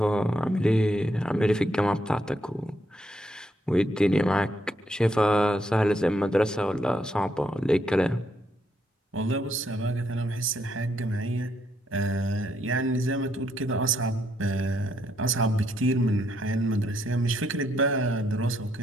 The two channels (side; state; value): both; normal; correlation 0.75